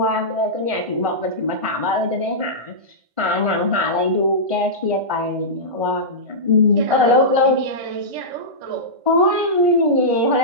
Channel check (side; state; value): left; late; 1.5 ms